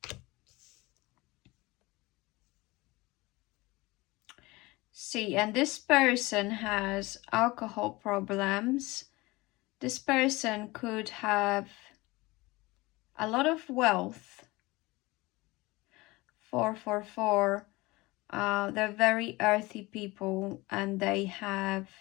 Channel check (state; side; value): quieter; right; 21.9 dB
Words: See, and this person has alcohol problems. This person could have a lot of wealth. 444. They're very earthy people and they have